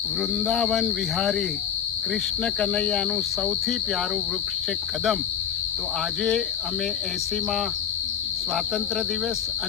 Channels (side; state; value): right; quieter; 8.4 dB